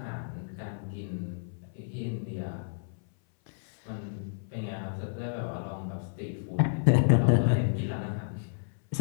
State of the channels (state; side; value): silent; right; 57 dB below the other